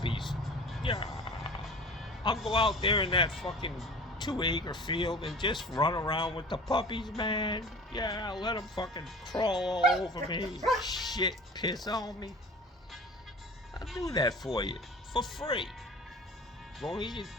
Yeah. I'll go out there in that fucking 2-acre field and just run around with the puppies, man. Yeah, let them fucking crawl all over me. Shit, piss on me. I'll do that for you. For free. As long as you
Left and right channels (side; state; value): both; normal; correlation 0.40